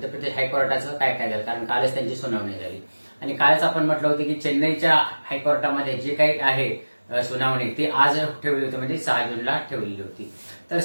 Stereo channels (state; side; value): inverted; both; correlation -1.00